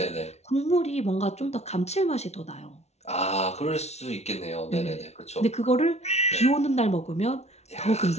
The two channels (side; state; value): right; late; 0.31 ms